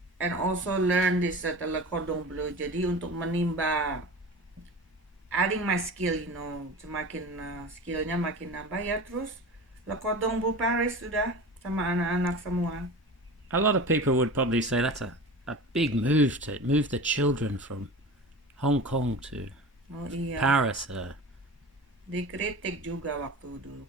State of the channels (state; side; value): normal; both; correlation 0.34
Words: And also learn this Le Cordon Bleu. Jadi untuk menimba adding my skill, semakin skillnya makin nambah ya. Terus Le Cordon Bleu Paris sudah sama anak-anak semua. A lot of people would probably say that's a big move to move the children from Hong Kong to Paris. Dikritik juga waktu dulu.